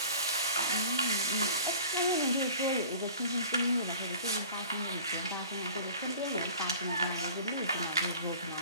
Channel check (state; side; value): inverted; both; correlation -0.44